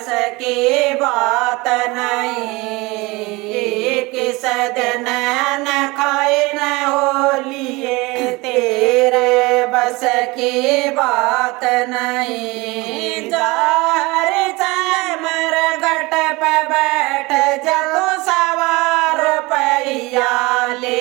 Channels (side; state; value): left; quieter; 23.6 dB